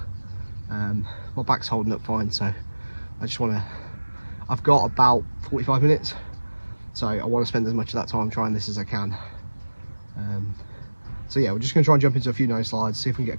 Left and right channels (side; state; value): both; inverted; correlation -1.00